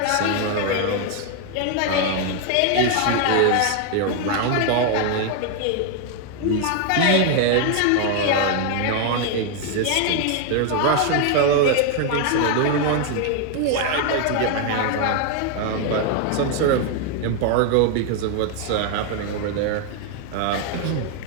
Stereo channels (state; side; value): different; both; correlation 0.01